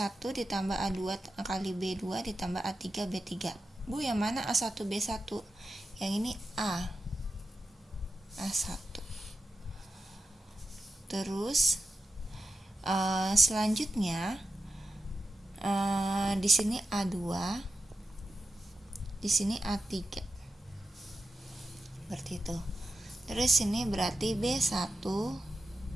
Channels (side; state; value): both; normal; correlation 0.89